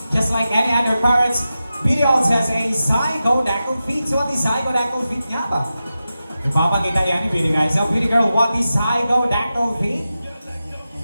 just like any other parrots, Beauty also has a zygodactyl feet. So what is zygodactyl feet nga ba? Ipapakita yan ni Beauty guys. So Beauty girl, what is zygodactyl feet?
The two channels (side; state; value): both; inverted; correlation -0.92